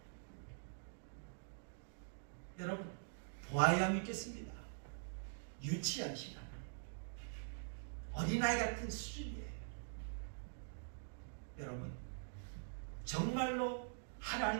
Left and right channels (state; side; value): silent; left; digital silence